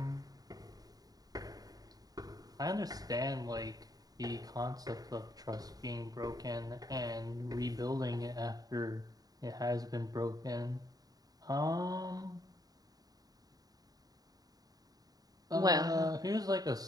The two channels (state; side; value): late; left; 0.18 ms